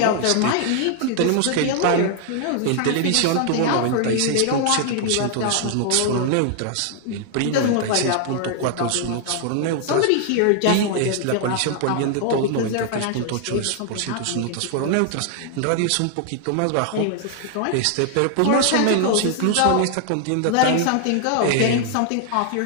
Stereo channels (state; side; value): different; both; correlation 0.00